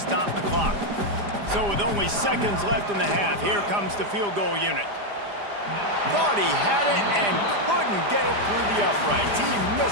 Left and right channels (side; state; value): left; late; 4.9 ms